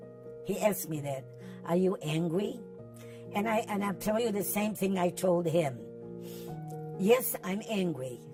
He asked me that. Are you angry? And I'll tell you the same thing I told him. Yes, I'm angry.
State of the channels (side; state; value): both; identical; correlation 1.00